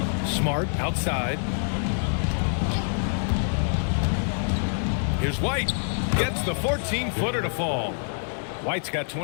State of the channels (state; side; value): silent; right; 61 dB below the other